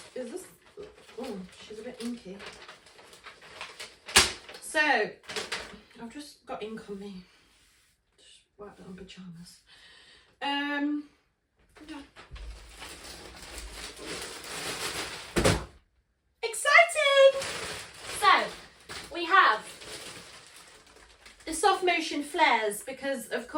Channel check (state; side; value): identical; both; correlation 1.00